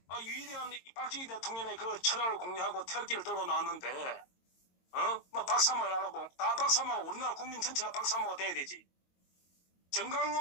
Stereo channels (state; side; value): late; right; 22 ms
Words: 위대한 박정희 대통령의 그 철학을 공유하고 태극기를 들고 나왔는데 뭐 박사모를 하라고 다 박사모 우리나라 국민 전체가 박사모가 돼야 되지.